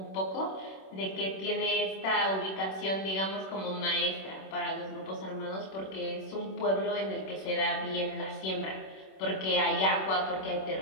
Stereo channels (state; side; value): late; right; 26 ms